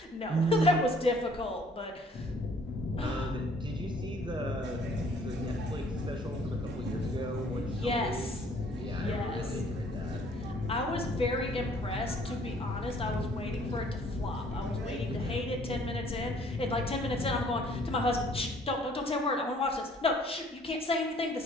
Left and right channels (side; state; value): both; normal; correlation 0.58